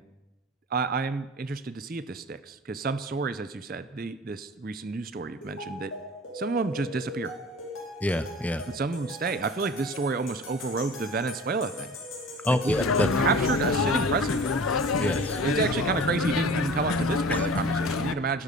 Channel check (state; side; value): normal; both; correlation 0.40